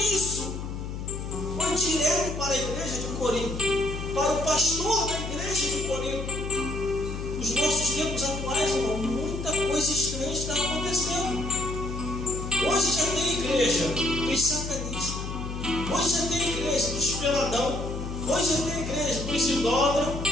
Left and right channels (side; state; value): left; noise; hum, 6 dB below the sound